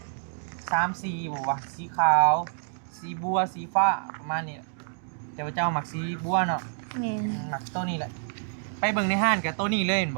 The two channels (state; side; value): silent; left; digital silence